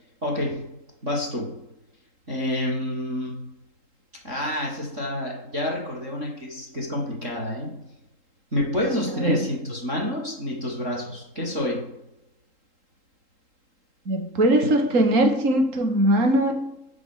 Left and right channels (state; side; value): late; left; 3.8 ms